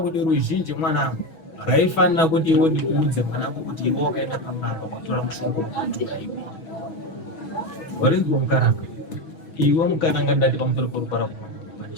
ruzhinji mwanangu raifanira kuti iwe ndikuudze mwanangu kuti iwe wakaenda pamwana wakatora mushongo wekutukaiwa warinzwa mukaranga iwe mukaranga ndati pamusoro porupara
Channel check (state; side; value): late; right; 6.2 ms